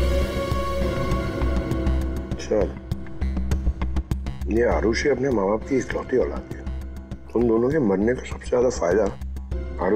ये आरुषि अपने माँ बाप की इकलौती औलाद है। उन दोनों के मरने का सबसे ज्यादा फायदा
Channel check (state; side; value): identical; both; correlation 1.00